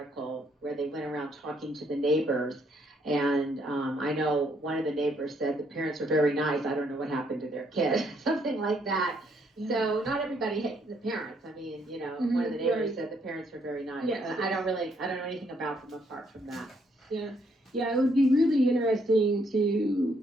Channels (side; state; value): both; normal; correlation 0.71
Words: where they went around talking to the neighbors. And I know one of the neighbors said the parents are very nice. I don't know what happened to their kid, something like that. Yeah. So not everybody hates the parents. I mean, one of the neighbors said the parents are very nice. Yes. I don't know anything about them apart from that. Yeah. Yeah, it would be really interesting